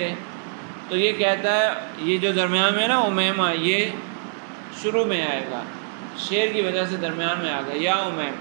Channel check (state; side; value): silent; left; digital silence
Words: تو یہ کہتا ہے، یہ جو درمیان میں نا امیمہ، یہ شروع میں آئے گا، شعر کی وجہ سے درمیان میں آ گیا، یا امیم،